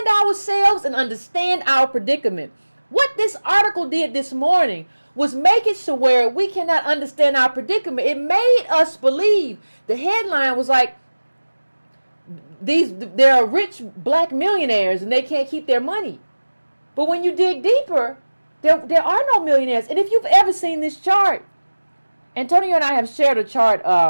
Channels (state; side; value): inverted; both; correlation -1.00